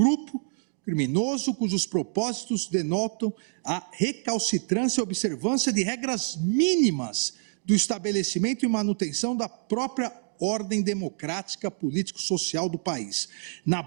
criminoso cujos propósitos denotam a recalcitrância e observância de regras mínimas do estabelecimento e manutenção da própria ordem democrática político-social do país, na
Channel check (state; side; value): silent; left; digital silence